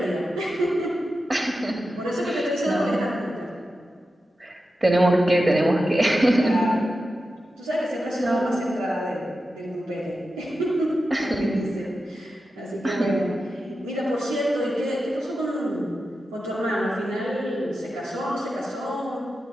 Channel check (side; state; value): both; normal; correlation 0.91